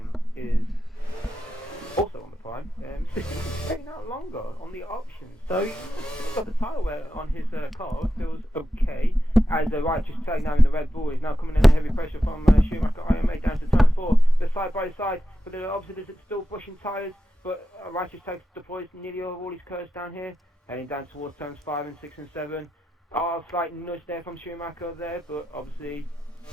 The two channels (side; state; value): both; normal; correlation 0.89